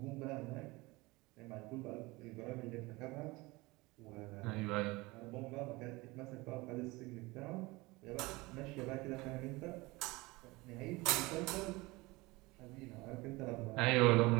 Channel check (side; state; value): left; quieter; 22.5 dB